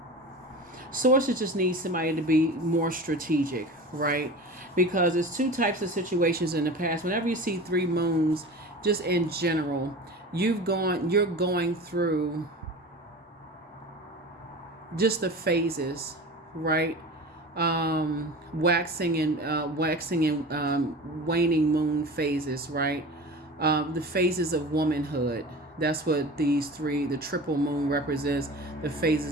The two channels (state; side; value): normal; both; correlation 0.34